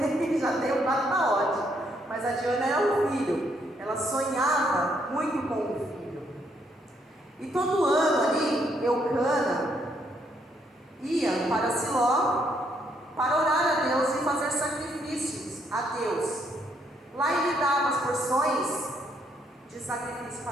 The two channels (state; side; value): normal; both; correlation 0.73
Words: Já tenho 4, tá ótimo. Mas a de Ana era um filho. Ela sonhava muito com um filho. E todo ano ali, Eucana ia para Siló para orar a Deus e fazer sacrifícios a Deus. Lá ele dava as porções de sacrifício